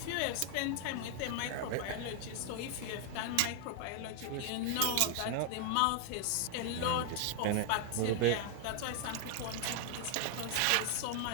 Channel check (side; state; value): both; different; correlation 0.00